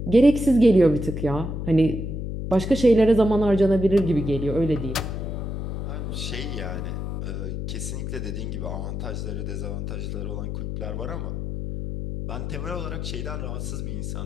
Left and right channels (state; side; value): noise; left; hum, 4 dB below the sound